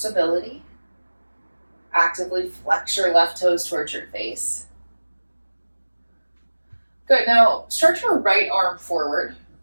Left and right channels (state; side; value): inverted; both; correlation -1.00